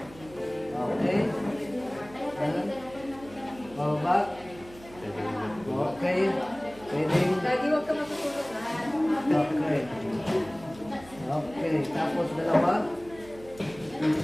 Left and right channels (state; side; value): noise; right; hum, 20 dB below the sound